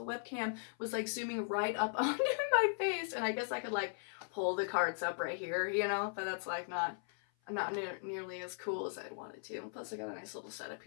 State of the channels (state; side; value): silent; right; 52 dB below the other